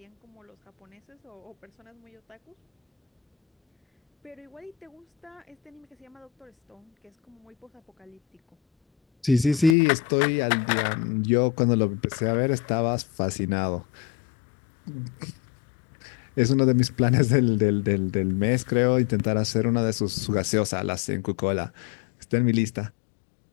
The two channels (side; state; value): right; drops out; at 9.8 s